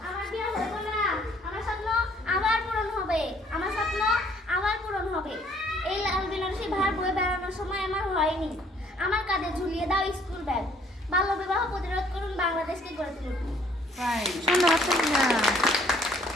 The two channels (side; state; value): both; normal; correlation 0.62